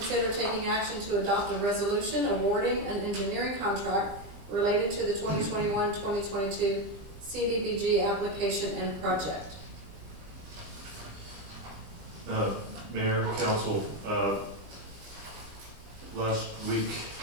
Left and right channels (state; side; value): late; left; 20 ms